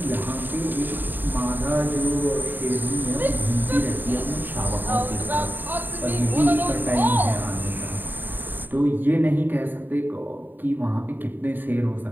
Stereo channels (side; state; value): left; late; 0.091 ms